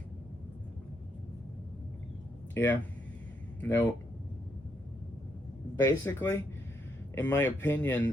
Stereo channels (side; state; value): both; normal; correlation 0.77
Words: yeah. No. Basically, in my